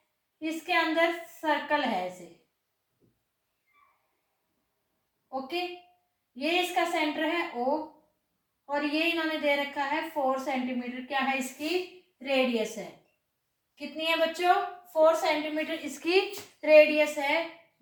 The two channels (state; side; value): identical; both; correlation 1.00